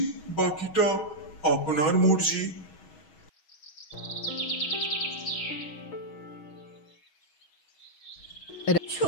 বাকিটা আপনার মর্জি।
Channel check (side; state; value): right; late; 6.3 ms